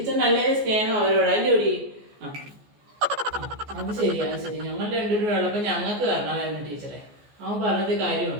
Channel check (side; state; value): left; late; 14 ms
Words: നല്ല സ്നേഹം അവരോട് അല്ലേ ഒടി? അത് ശരി, അത് ശരി. ഞങ്ങൾ 2 പേരും ഉള്ളപ്പോൾ ഞങ്ങൾക്ക് തരണമായിരുന്നു ടീച്ചറെ. അവൻ പറഞ്ഞത്